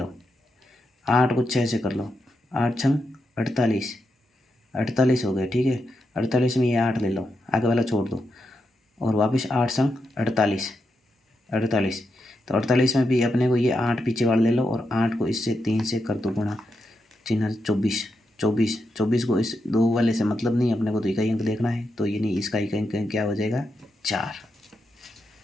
8 को 6 से कर लो, 8 छंग 48, 48 हो गया। ठीक है, 48 में ये 8 ले लो, आगे वाला छोड़ दो, और वापस 8 संग 48, 48, तो 48 में भी अपने को ये 8 पीछे वाला ले लो, और 8 को इससे 3 से कर दो गुणा, चिन्ह 24, 24, 24 को इस 2 वाले से मतलब नहीं, अपने को तो इकाई अंक देखना है, तो ये नहीं, इसका इकाई अंक क्या हो जाएगा 4।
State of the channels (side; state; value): both; normal; correlation 0.85